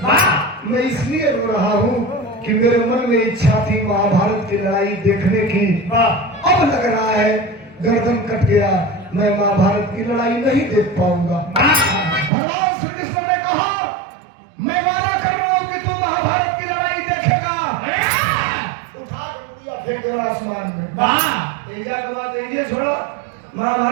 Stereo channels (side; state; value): left; drops out; at 12.3 s